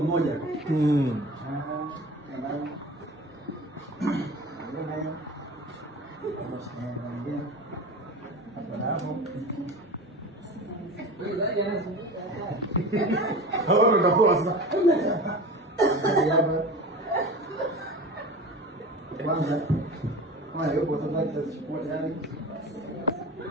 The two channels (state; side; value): normal; both; correlation 0.34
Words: Hapo utapoa sasa. Kwanza kama yupo sasa tutachukua tayari.